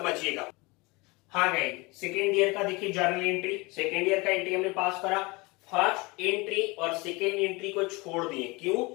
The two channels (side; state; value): right; quieter; 25.0 dB